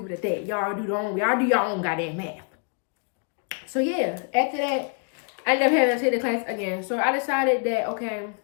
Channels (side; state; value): right; quieter; 37.3 dB